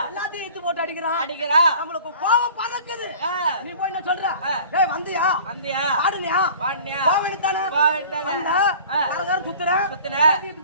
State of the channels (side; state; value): both; inverted; correlation -0.45